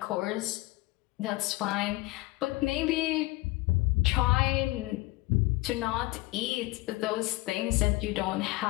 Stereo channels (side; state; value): right; quieter; 20.8 dB